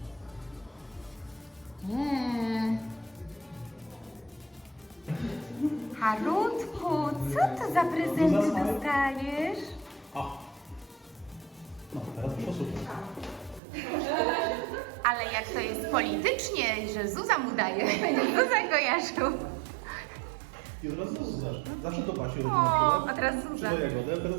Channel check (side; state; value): left; drops out; at 13.6 s